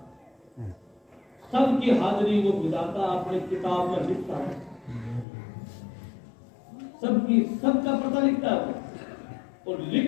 सबकी हाजिरी वो विधाता अपनी किताब में लिखता है, सबका पता लिखता है, और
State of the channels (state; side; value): drops out; right; at 5.2 s